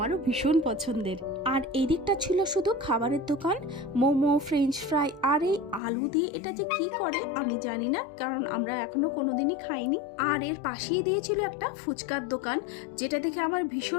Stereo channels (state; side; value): drops out; right; at 5.8 s